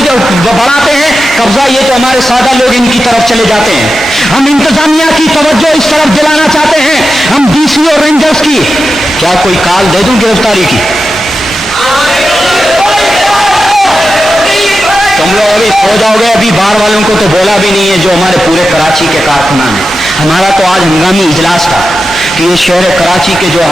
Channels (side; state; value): both; normal; correlation 0.91